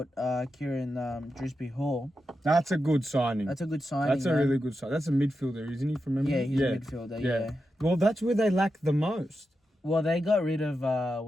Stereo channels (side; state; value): both; normal; correlation 0.88